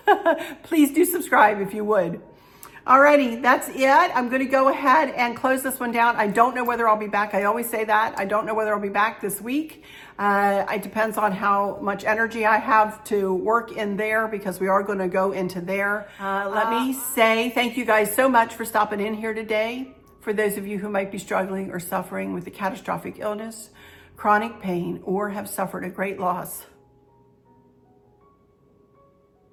please do subscribe if you would. Alrighty, that's it. I'm going to go ahead and close this one down. I don't know whether I'll be back. I always say that. I don't know whether I'll be back this week. It depends on how much energy I have to work in there, because we are going to go into there. Let me say thank you guys so much for stopping in here today. For those of you who might be struggling or suffering with a catastrophic illness, chronic pain, or have suffered a great loss,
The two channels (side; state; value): both; identical; correlation 1.00